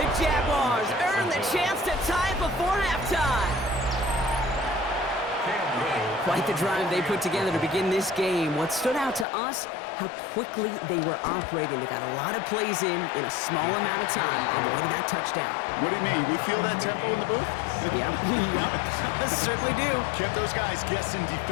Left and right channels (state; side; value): drops out; right; at 9.2 s